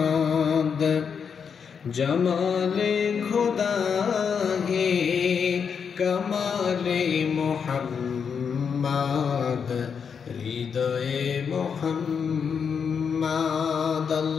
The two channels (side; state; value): right; quieter; 6.6 dB